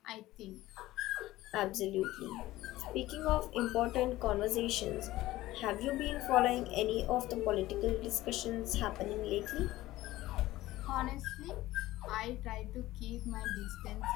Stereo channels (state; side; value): quieter; right; 16.7 dB